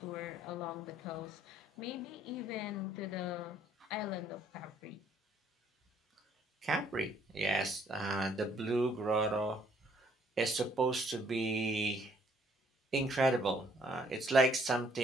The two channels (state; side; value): normal; both; correlation 0.64